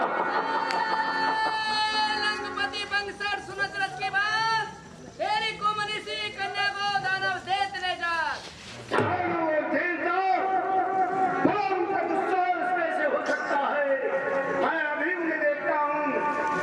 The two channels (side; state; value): both; identical; correlation 1.00